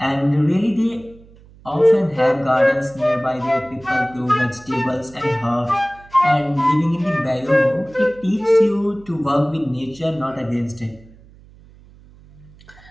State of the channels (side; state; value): right; noise; hum, 24 dB below the sound